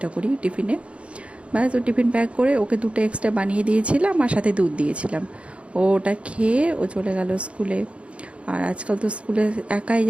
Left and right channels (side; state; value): left; late; 0.061 ms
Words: করি টিফিনে। ব্যাস, ও টিফিন প্যাক করে ওকে দুটো এক্সট্রা বানিয়ে দিয়েছিলাম আর সাথে দুধ দিয়েছিলাম। ও ওটা খেয়ে ও চলে গেল স্কুলে। আর আজকাল তো স্কুলে একাই